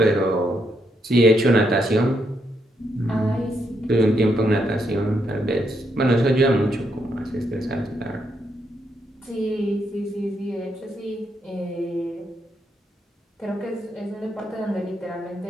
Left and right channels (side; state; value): both; normal; correlation 0.78